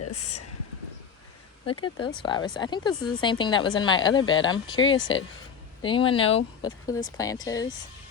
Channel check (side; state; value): right; quieter; 6.9 dB